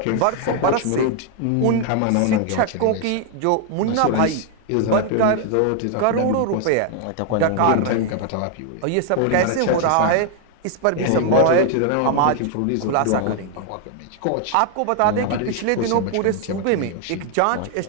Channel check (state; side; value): different; both; correlation 0.00